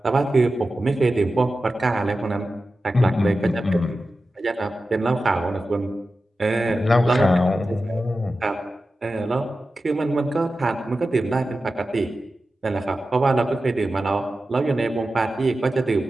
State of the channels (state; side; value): normal; both; correlation 0.93